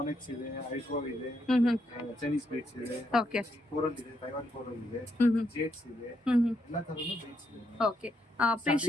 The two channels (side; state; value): both; normal; correlation 0.78